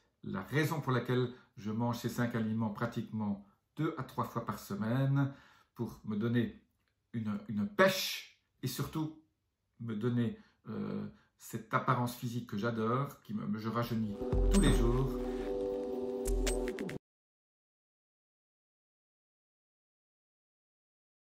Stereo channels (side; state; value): both; identical; correlation 1.00